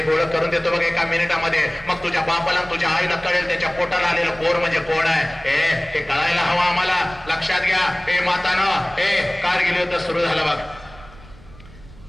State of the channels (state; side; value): noise; right; rumble, 21 dB below the sound